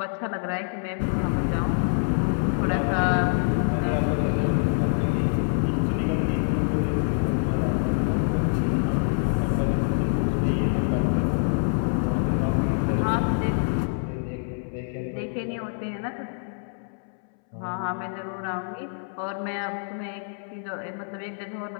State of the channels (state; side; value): silent; right; 61 dB below the other